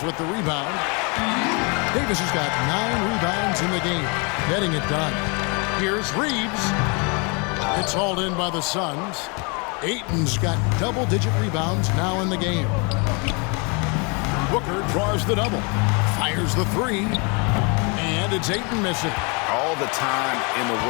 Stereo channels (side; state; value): right; quieter; 32.5 dB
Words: with the rebound. Davis has got 9 rebounds in the game, getting it done. Here's Reeves. It's hauled in by the Suns. Ayton's got double-digit rebounds now in the game. Booker draws the double. Fires the 3. And it's Ayton missing. All the time in the